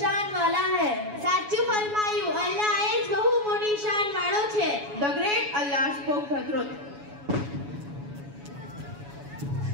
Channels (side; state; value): left; late; 7.1 ms